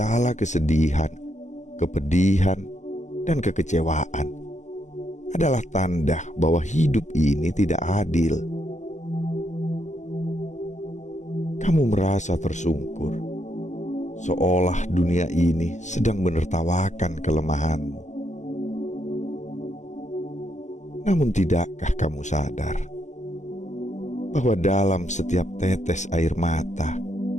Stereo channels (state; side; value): late; right; 0.34 ms